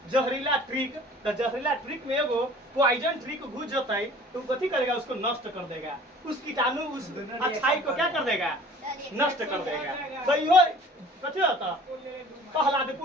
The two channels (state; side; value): normal; both; correlation 0.48